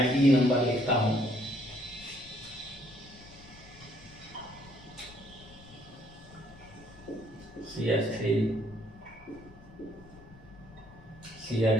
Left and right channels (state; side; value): noise; left; rumble, 21 dB below the sound